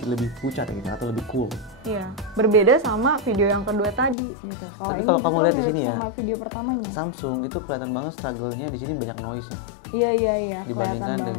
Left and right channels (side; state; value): right; drops out; at 4.2 s